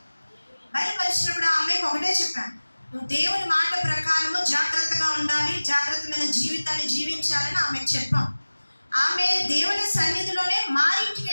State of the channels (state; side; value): inverted; both; correlation -1.00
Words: బయలుపరిచినప్పుడు ఆ అమ్మాయికి ఒకటే చెప్పాను, నువ్వు దేవుని మాట ప్రకారము జాగ్రత్తగా ఉండాలి, జాగ్రత్తమైన జీవితాన్ని జీవించాలని ఆమెకు చెప్పాం. ఆమె దేవుని సన్నిధిలోనే మా ఇంటికి